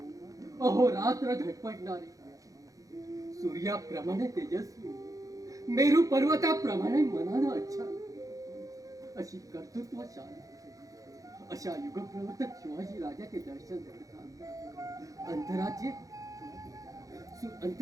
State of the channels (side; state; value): left; late; 0.17 ms